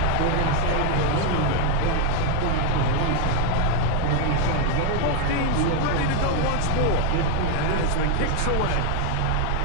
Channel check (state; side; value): different; both; correlation 0.01